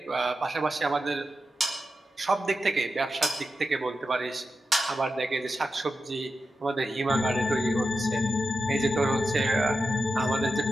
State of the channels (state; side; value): normal; both; correlation 0.90